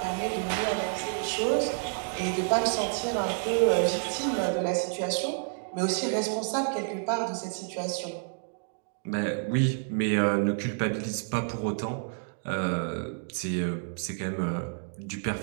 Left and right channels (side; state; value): left; silent; digital silence